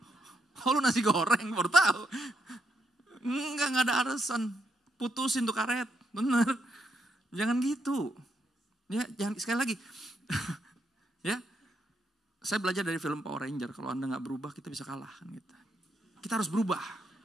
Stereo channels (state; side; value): normal; both; correlation 0.79